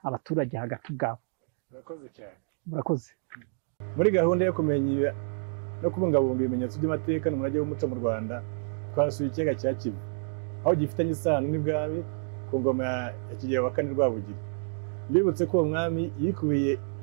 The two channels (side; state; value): left; silent; 59 dB below the other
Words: abaturage hagati ubwabo. urakoze cyane. murakoze. Muri gahunda yo kumenya no kubungabunga ibimenyetso by'amateka n'umurage w'umuco mu Rwanda, twasuye ikiyaga cya Kivu, aho gifitanye isano n'ibwami ku ngoma ya Kigeli wa kane Rwabugiri. Mbibutse ko uwo mwami yikubiye